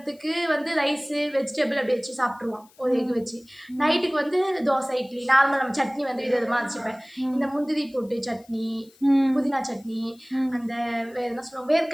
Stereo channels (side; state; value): left; noise; hiss, 29 dB below the sound